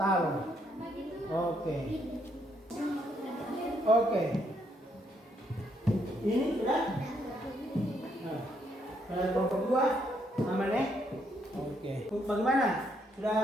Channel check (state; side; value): normal; both; correlation 0.73